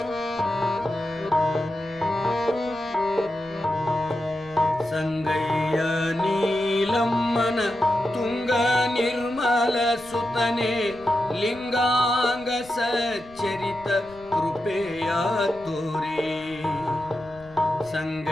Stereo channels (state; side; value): noise; left; rumble, 23 dB below the sound